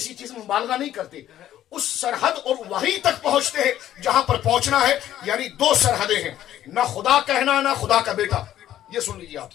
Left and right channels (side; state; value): right; quieter; 12.2 dB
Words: چیز میں مبالغہ نہیں کرتے، اس سرحد اور وہیں تک پہنچتے ہیں جہاں پر پہنچنا ہے، یعنی دو سرحدیں ہیں، نہ خدا کہنا نہ خدا کا بیٹا۔ یہ سن لیجیے آپ،